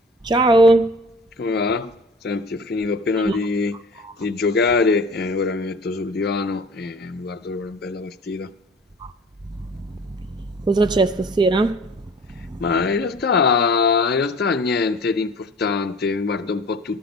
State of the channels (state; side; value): normal; both; correlation 0.44